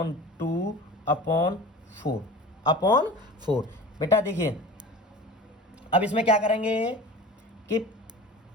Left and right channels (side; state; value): both; normal; correlation 0.38